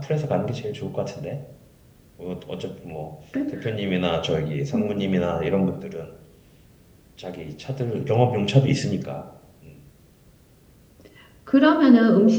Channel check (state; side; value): identical; both; correlation 1.00